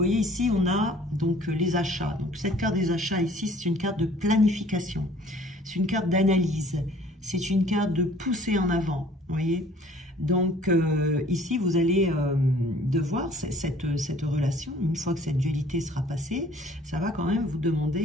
ici, on a donc les achats. Donc cette carte des achats ici, c'est une carte de planification. C'est une carte d'analyse. C'est une carte de pousser en avant. Vous voyez. Donc ici, vous allez devoir, cette relation, une fois que cette dualité sera passée, ça va quand même vous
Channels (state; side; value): normal; both; correlation 0.54